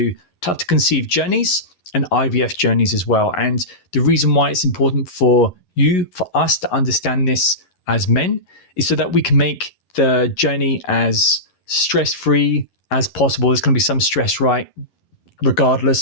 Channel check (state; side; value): late; right; 11 ms